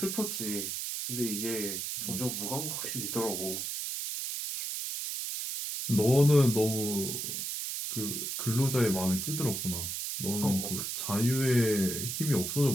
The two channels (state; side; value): noise; right; hiss, 3 dB below the sound